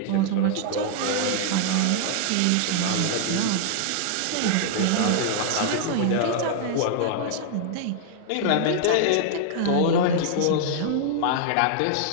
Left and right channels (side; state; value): both; different; correlation -0.01